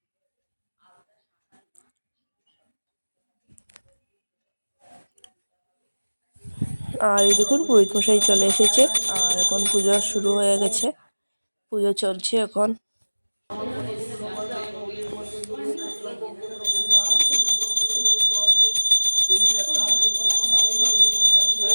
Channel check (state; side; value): inverted; both; correlation -1.00